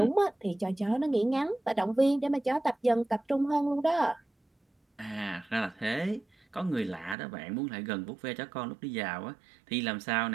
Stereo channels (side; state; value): left; drops out; at 7.2 s